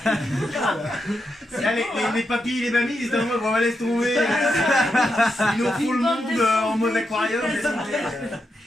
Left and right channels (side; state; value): both; normal; correlation 0.85